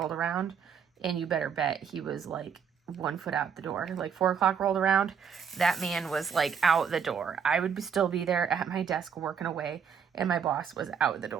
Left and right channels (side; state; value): left; quieter; 7.1 dB